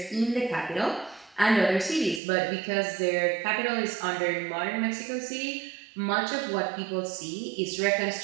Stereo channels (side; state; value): left; drops out; at 2.2 s